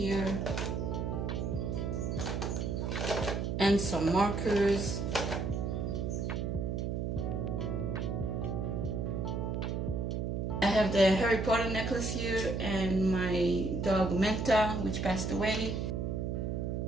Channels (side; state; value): right; noise; hum, 1 dB below the sound